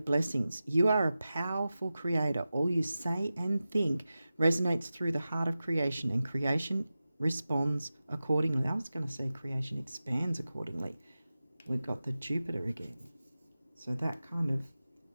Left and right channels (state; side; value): inverted; both; correlation -0.94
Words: You are a powerful creator. All you say and think resonates through the heart of creation, and creation responds accordingly. I was going to say creation expands accordingly. We've got the Jupiter again. So that kind of